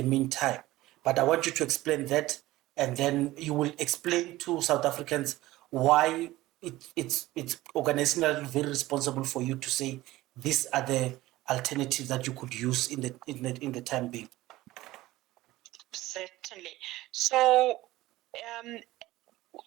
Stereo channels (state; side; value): quieter; left; 17.3 dB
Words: meantime, but I want you to explain that, and then you will explain to South Africans why it's organizationally very responsible for you to say these are the alternatives that you could use in the time being. Certainly. So,